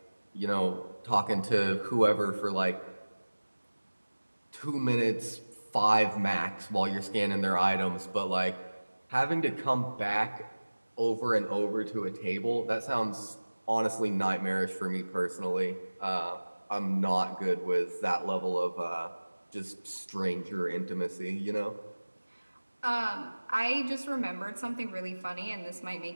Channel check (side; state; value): both; inverted; correlation -1.00